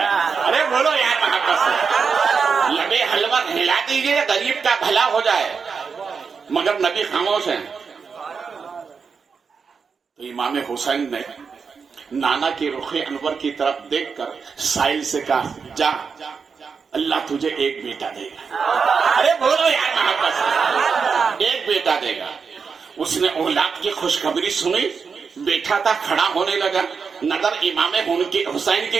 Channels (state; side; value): quieter; left; 5.6 dB